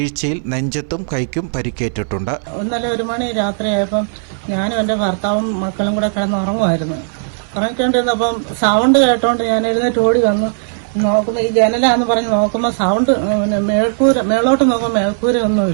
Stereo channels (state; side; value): silent; left; digital silence